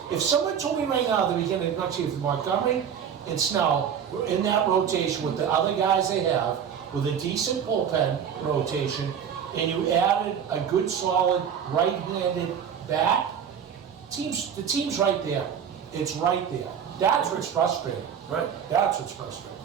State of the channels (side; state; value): left; quieter; 8.0 dB